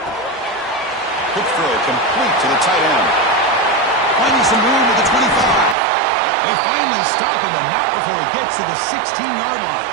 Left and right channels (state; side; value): drops out; left; at 5.8 s